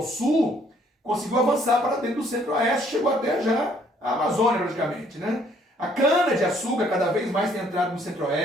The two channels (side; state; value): both; normal; correlation 0.64